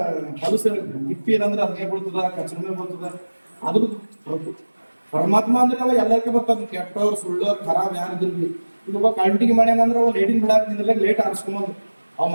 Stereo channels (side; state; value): both; inverted; correlation -1.00